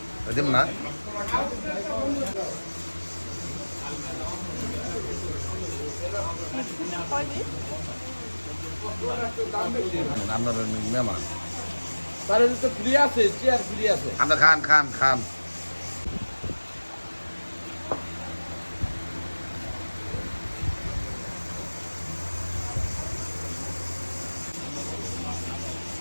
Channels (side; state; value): both; inverted; correlation -1.00